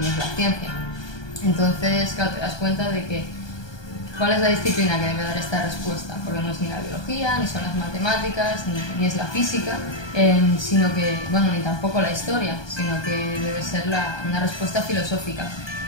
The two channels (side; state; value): right; late; 1.2 ms